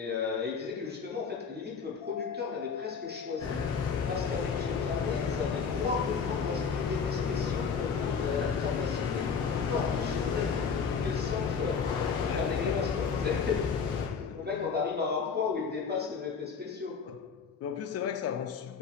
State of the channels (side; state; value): right; quieter; 5.9 dB